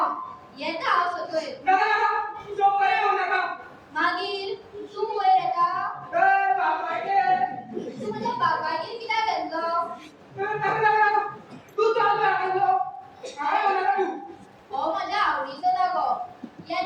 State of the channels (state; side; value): identical; both; correlation 1.00